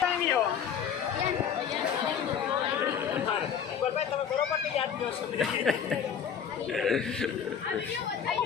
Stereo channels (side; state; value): right; quieter; 7.8 dB